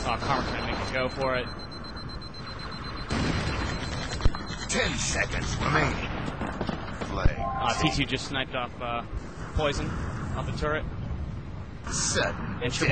Karma's gonna make it go for it. 10 seconds remaining. Flag. T2 just sniped off Poison off the turret. Sudden. And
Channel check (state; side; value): identical; both; correlation 1.00